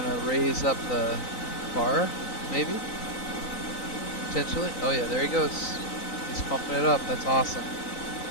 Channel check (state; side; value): late; right; 3.9 ms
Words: raise up the bar, maybe? Potentially. Oh yeah, there he goes. He's pumping it up. That's awesome.